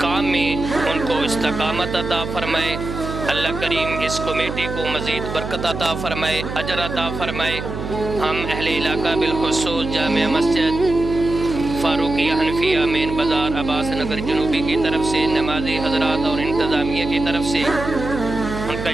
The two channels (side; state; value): right; noise; hum, 7 dB below the sound